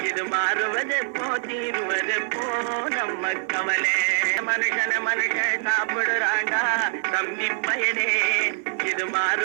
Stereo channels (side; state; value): left; silent; digital silence